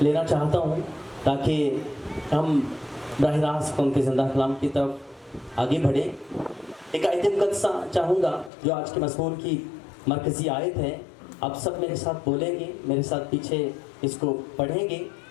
लेना चाहता हूँ ताकि हम बराह रास्त उनके ज़िंदा कलाम की तरफ आगे बढ़ें। एक आयत मुक़द्दसा चाहूँगा जो आज के मज़मून की मरकज़ी आयत है। आप सब मेरे साथ बोलेंगे, मेरे साथ पीछे इसको पढ़ेंगे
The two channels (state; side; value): drops out; right; at 8.5 s